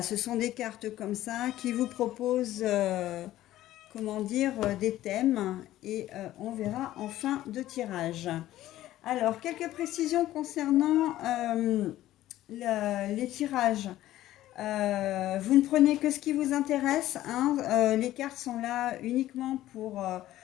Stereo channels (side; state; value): right; quieter; 14.4 dB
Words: ce sont des cartes comme ça qui vous proposent des thèmes et on verra en fin de tirage. Alors, quelques précisions concernant les tirages. Vous ne prenez que ce qui vous intéresse. Les cartes sont là uniquement pour